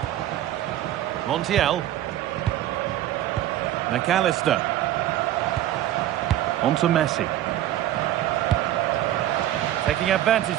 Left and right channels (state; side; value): quieter; left; 13.1 dB